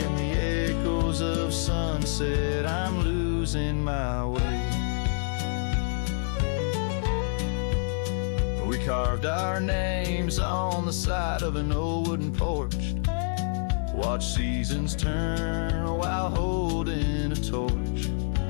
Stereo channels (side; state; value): right; silent; 60 dB below the other